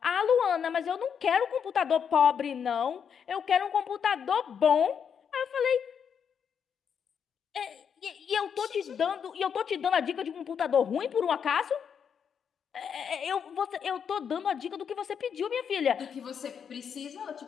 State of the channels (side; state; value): right; quieter; 7.4 dB